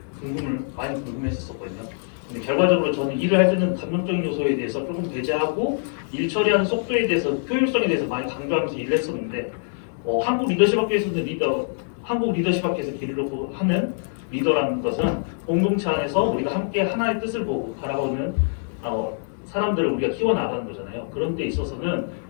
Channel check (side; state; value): right; silent; digital silence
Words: 많이 궁금했었거든요. 근데 결과적으로 저는 일을 할 때는 감정적인 요소에 대해서 조금 배제하고 일 처리하는 속도에 대해서 효율성에 대해서 많이 강조하면서 일을 했었는데 한국 리더십학교에서는 한국 리더십학교에서 길을 놓고 하는 리더라는 것은 공동체 안에서 우리가 함께 하나의 뜻을 보고 바라보는 사람들을 우리가 키워나가는 거잖아요. 그런 데 있어서는